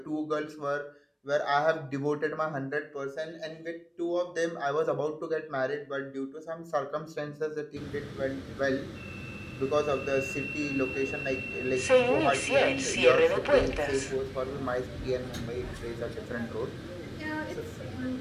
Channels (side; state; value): both; identical; correlation 1.00